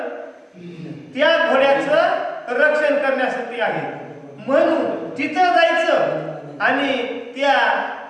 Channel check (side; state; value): both; identical; correlation 1.00